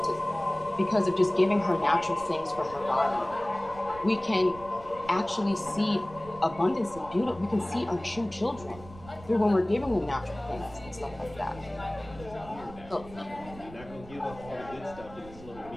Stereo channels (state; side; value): noise; right; rumble, 18 dB below the sound